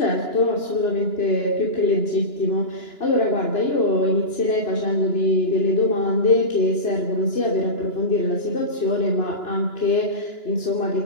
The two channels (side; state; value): right; late; 2.9 ms